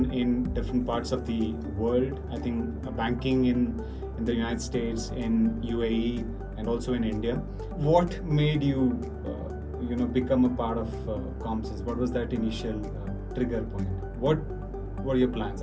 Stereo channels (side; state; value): both; identical; correlation 1.00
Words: in different parts of the world. I think banking in the United States, in UAE, and also in India. What made you, become a part of Comsense? What was that initial trigger point? What were your plans